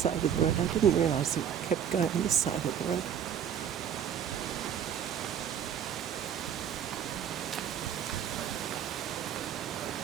of the road. I didn't realise it kept going this side of the road.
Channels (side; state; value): left; quieter; 8.8 dB